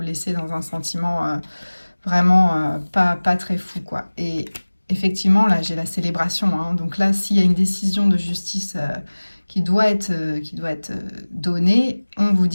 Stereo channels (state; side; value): inverted; both; correlation -1.00